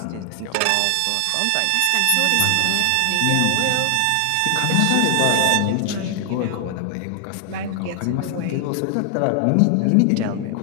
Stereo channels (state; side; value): different; both; correlation 0.00